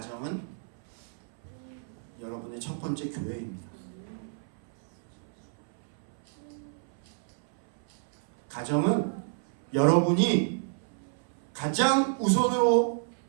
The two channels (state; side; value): silent; left; 57 dB below the other